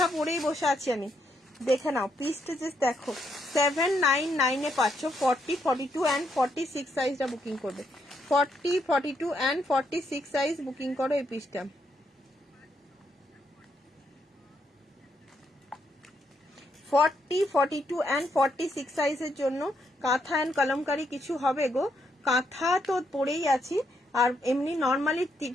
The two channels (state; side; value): normal; both; correlation 0.77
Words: পরেই বসে আছি আমি। দেখে নাও পিসটা জাস্ট দেখো 799 এ পাচ্ছ 40, 42 অ্যান্ড 46 সাইজটা বুকিং করবে। 40, 42 অ্যান্ড 46 সাইজ বুকিং করো এই পিসটা। 40, 42 অ্যান্ড 46 সাইজের জন্য কাঁথা অ্যান্ড কলমকারি কিছু হবে গো। কাঁথা তো পরেই আছি, আর এমনি নর্মালি